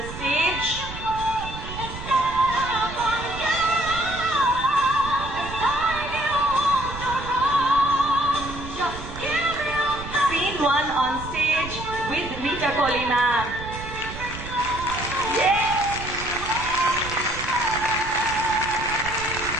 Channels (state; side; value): noise; right; rumble, 11 dB below the sound